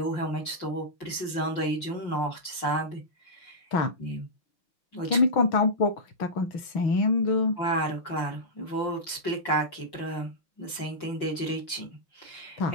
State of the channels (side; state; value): right; late; 5.7 ms